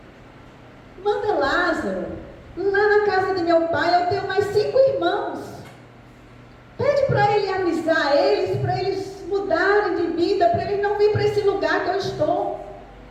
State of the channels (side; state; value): both; identical; correlation 1.00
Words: manda Lázaro lá na casa de meu pai. Eu tenho mais 5 irmãos. Pede para ele avisar eles, para eles mudarem de vida, para eles não virem para esse lugar que eu estou.